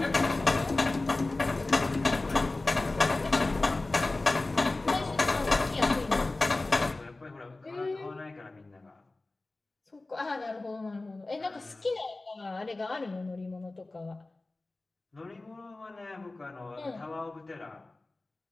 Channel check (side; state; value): right; quieter; 3.1 dB